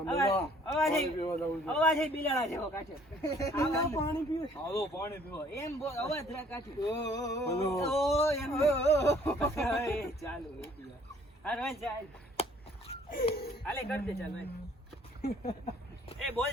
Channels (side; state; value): both; normal; correlation 0.59